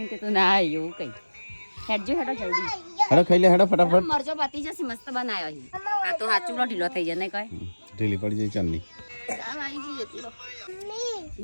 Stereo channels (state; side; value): inverted; both; correlation -1.00